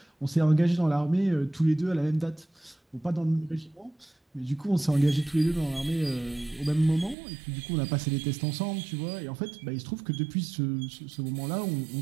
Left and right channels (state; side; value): drops out; left; at 7.2 s